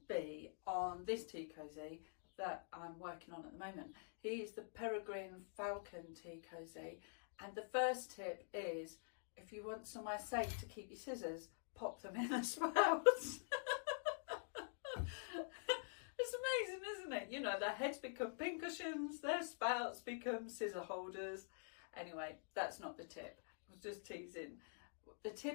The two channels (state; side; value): silent; right; digital silence